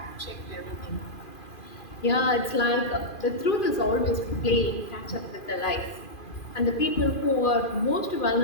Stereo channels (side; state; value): right; late; 2.4 ms